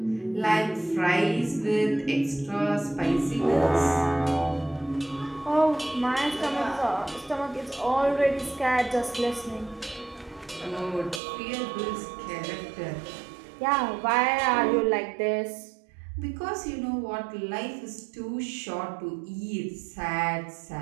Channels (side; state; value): left; drops out; at 11.2 s